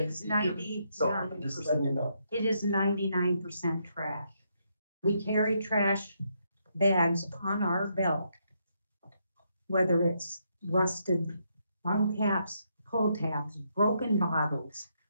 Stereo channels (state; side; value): inverted; both; correlation -0.77